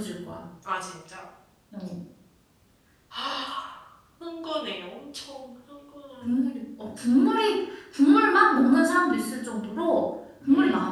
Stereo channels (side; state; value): both; identical; correlation 1.00